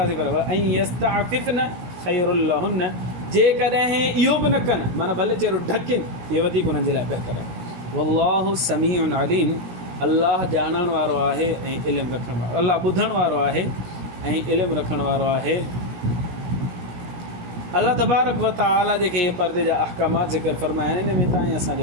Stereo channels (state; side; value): late; left; 17 ms